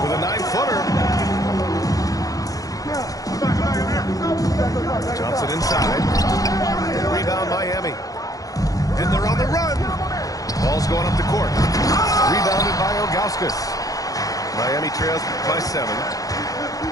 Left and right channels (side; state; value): right; late; 0.17 ms